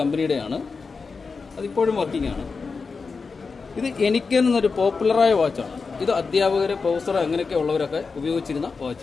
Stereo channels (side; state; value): right; quieter; 4.7 dB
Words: അതിപ്പോഴും വർക്കിംഗ് ആണ്. ഇത് എനിക്കൻ എന്നൊരു പോപ്പുലറായ വാച്ചാണ്. ഇത് അധ്യാപകർ, പ്രൊഫസർ അങ്ങനെയൊക്കെ ഉള്ളവരൊക്കെ ഉപയോഗിച്ചിരുന്ന